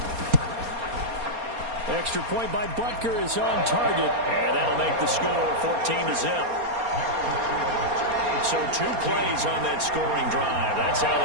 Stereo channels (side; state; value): left; late; 4.3 ms